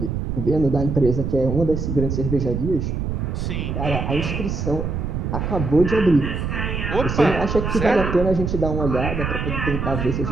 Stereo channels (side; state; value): right; noise; rumble, 3 dB below the sound